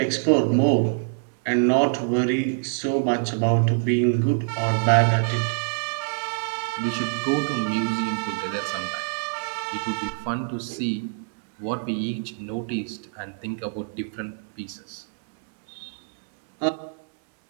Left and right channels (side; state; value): left; silent; digital silence